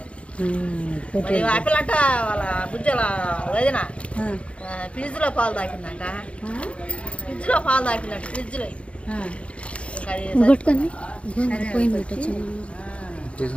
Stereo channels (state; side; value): late; right; 0.061 ms